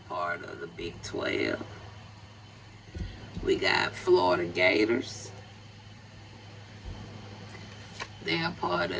part of the Big 12. We got Florida Gators. They are part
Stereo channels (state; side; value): identical; both; correlation 1.00